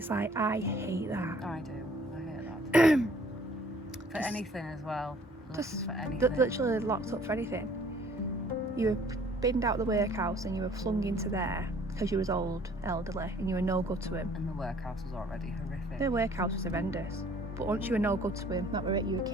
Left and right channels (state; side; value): normal; both; correlation 0.56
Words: like, I hate that. I do. I hate that too. For anything as well. Just for anything. literally locked up for anything. You were binned out of the workhouse and you were flung into there because you was old, elderly, and you were no good to him. And the workhouse was already horrific. The workhouse was horrendous. But once you were no good to him, that were it, you were